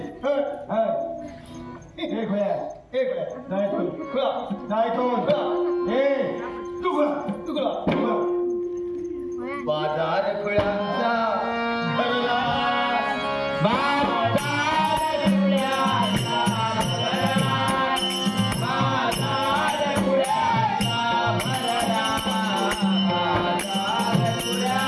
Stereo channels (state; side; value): identical; both; correlation 1.00